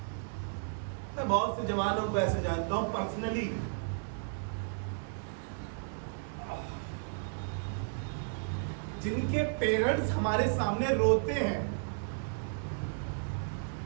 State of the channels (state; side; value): silent; left; 55 dB below the other